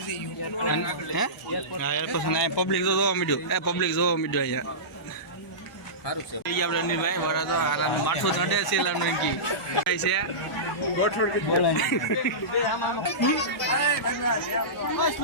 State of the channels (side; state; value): both; normal; correlation -0.20